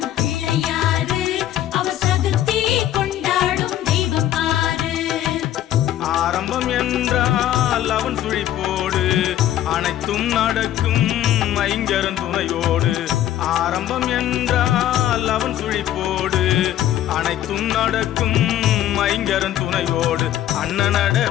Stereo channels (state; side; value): quieter; right; 12.3 dB